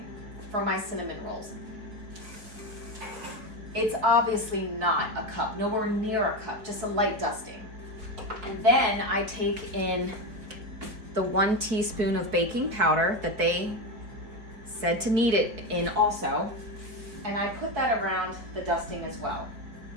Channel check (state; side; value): late; left; 4.5 ms